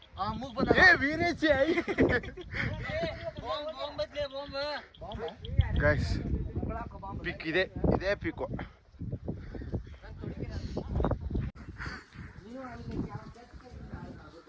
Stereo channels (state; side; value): identical; both; correlation 1.00